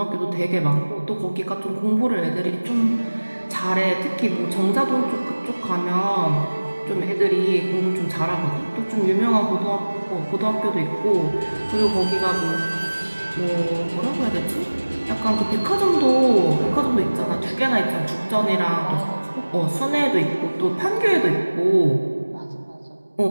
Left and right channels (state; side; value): inverted; both; correlation -1.00